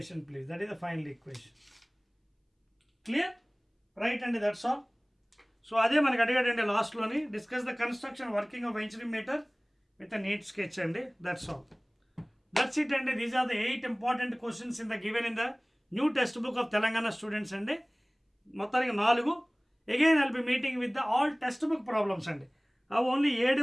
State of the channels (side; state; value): both; identical; correlation 1.00